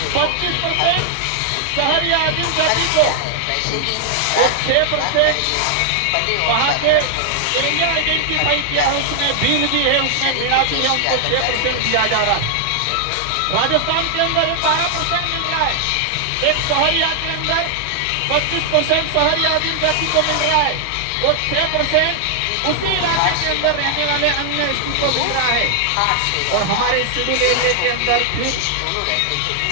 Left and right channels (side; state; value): both; different; correlation 0.00